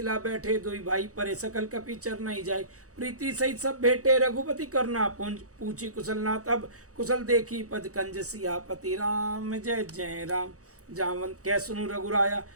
बैठे दुई भाई, परे सकल कपि चर नहीं जाय। प्रीति सहित सब भेटे, रघुपति करना पुंज, पूछी कुशल नाथ अब कुशल देखी, पद कंज सियापति राम जय जय राम। जावंत कह सुनु रघुराया,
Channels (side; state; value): left; late; 0.65 ms